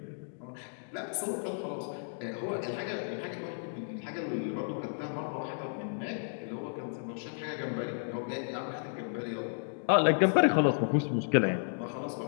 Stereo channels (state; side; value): silent; right; digital silence